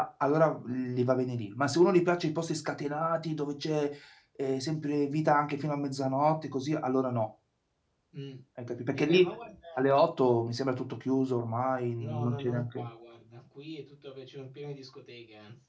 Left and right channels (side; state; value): both; identical; correlation 1.00